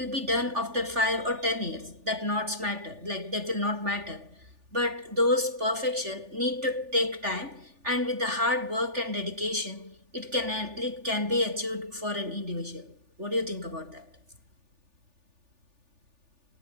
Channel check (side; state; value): left; late; 3.4 ms